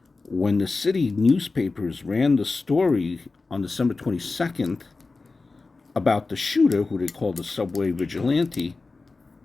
When the city newspapers ran the story on December 22nd about the shooter, who they called the subway vigilante,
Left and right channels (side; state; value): right; quieter; 3.8 dB